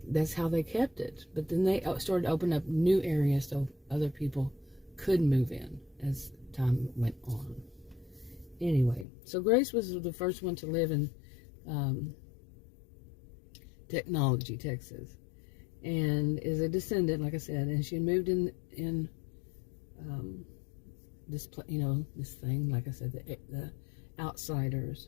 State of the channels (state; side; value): drops out; right; at 9.1 s